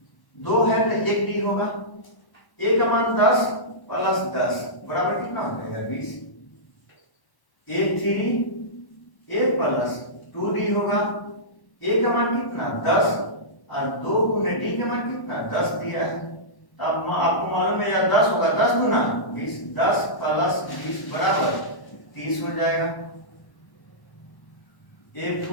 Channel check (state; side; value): late; right; 1.1 ms